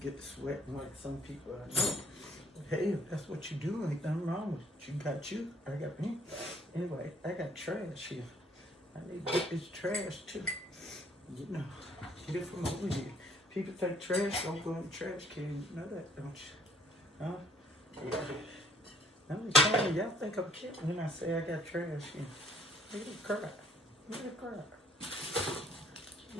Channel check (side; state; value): both; normal; correlation 0.61